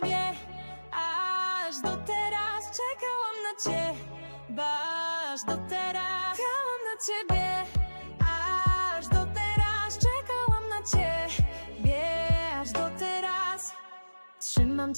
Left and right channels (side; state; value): both; inverted; correlation -1.00